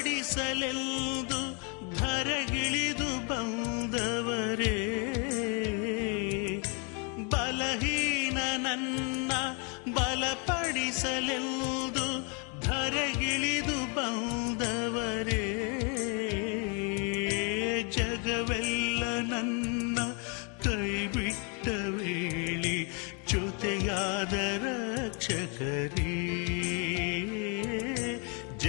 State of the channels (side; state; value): right; quieter; 35.4 dB